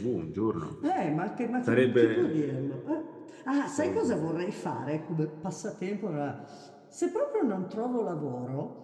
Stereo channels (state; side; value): identical; both; correlation 1.00